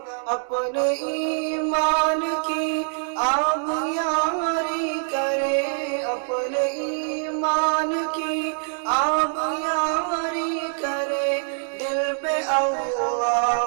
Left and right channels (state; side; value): silent; left; digital silence